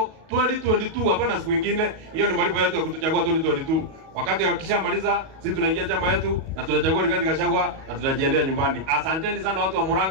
2022, hapana siku nyingine. Hiyo ni malipo yetu ya kutuchagua 2022. Wakati wakishamaliza sisi tunaingia chama yetu na tunachagua Rigathi Gachagua na tunajiendea nyumbani. Asanteni sana watu wa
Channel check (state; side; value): late; left; 37 ms